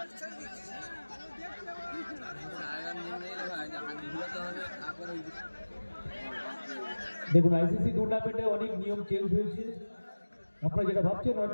দেখুন আইসিসি টুর্নামেন্টে অনেক নিয়ম চেঞ্জ হয়েছে। আপনারা যেটা ভাবছেন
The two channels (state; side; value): inverted; both; correlation -1.00